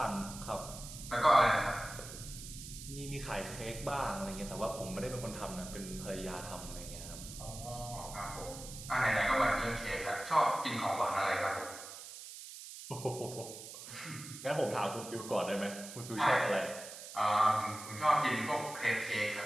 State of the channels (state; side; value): noise; right; hiss, 12 dB below the sound